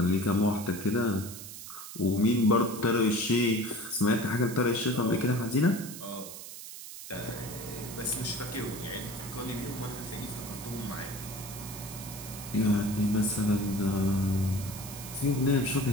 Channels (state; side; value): noise; right; hiss, 12 dB below the sound